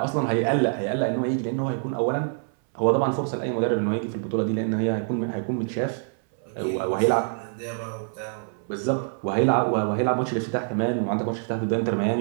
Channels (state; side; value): silent; left; 61 dB below the other